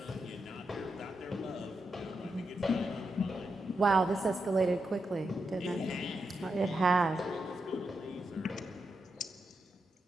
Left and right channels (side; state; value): both; normal; correlation 0.85